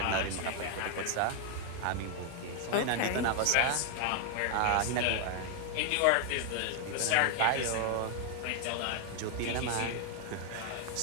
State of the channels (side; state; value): both; different; correlation 0.00